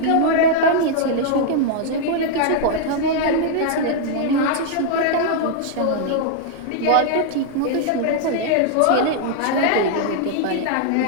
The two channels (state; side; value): different; both; correlation -0.01